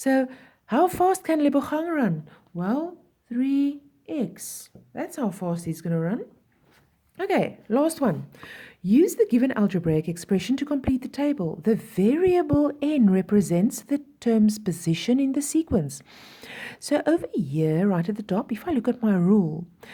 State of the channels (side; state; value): both; identical; correlation 1.00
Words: how fast can Lebochang run? Well, 3x. That's how fast he's going to run. Okay, last one. Use the given algebraic expression to complete the table. The variable n represents the term's position in the sequence. So over here, right at the top, if I look at my rule,